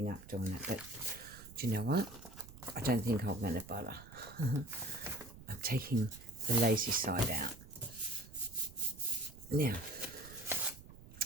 up doing it, but do you know what? I don't think I'm going to bother. I'm taking the lazy side out. Now,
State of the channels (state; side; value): noise; right; rumble, 18 dB below the sound